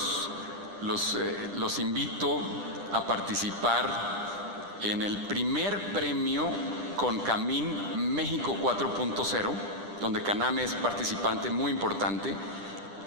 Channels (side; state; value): left; late; 10 ms